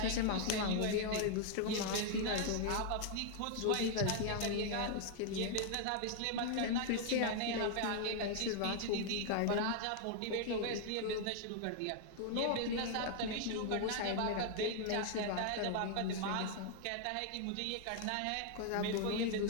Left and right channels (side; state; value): both; different; correlation 0.00